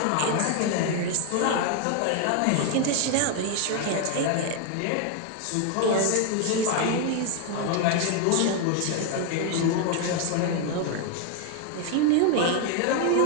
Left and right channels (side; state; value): both; different; correlation 0.01